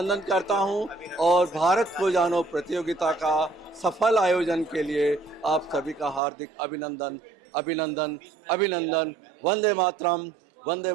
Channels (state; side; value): drops out; left; at 6.2 s